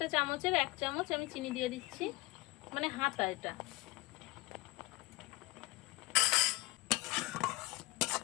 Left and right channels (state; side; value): quieter; right; 20.5 dB